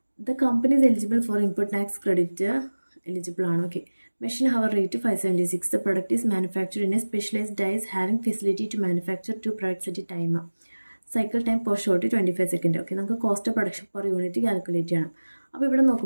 The company is eligible for input tax credit. Eligible ആണ്. Okay. Machine hour rate 576. The product is manufactured in a specialized dies having facility to manufacture 2 products at a time. Cycle time per short 25 seconds. Okay, നമുക്ക് cost production per unit calculate ചെയ്യണം. അപ്പോൾ ഇവിടെ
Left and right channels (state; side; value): inverted; both; correlation -1.00